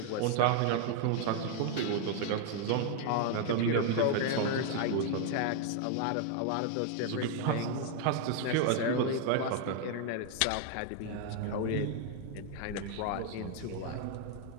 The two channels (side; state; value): both; different; correlation 0.00